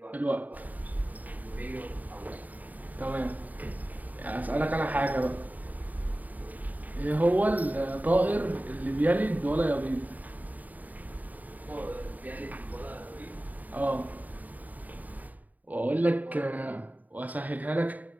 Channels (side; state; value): left; late; 0.078 ms